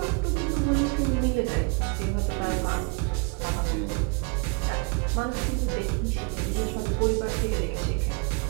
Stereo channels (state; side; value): quieter; left; 32.2 dB